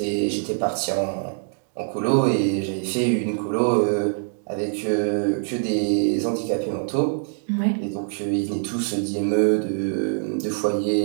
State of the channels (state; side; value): silent; left; digital silence